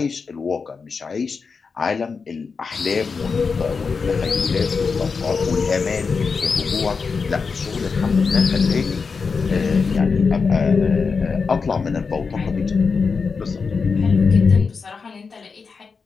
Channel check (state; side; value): quieter; right; 5.1 dB